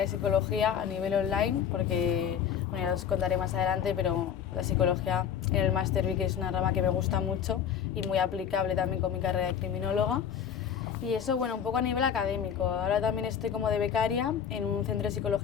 psicología a nivel online, porque, bueno, ya os contaré más adelante, pero la psicología en el máster vi que es una rama que me gusta mucho y muy aplicable también con mi carrera de criminóloga. Y eso, bueno, un poco a nivel académico. Ahora también estoy como de becaria en un centro de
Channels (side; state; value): right; quieter; 8.3 dB